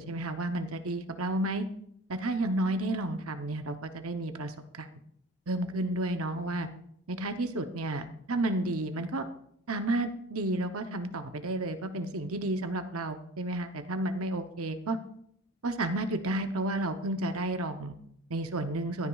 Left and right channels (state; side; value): normal; both; correlation 0.40